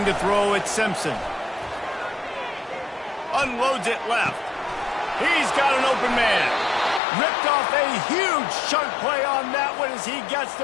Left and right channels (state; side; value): drops out; right; at 7.0 s